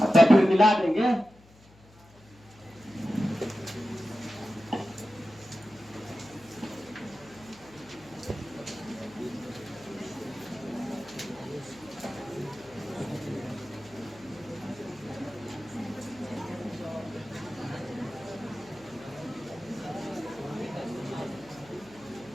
फिर मिला देंगे।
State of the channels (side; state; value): left; noise; hum, 25 dB below the sound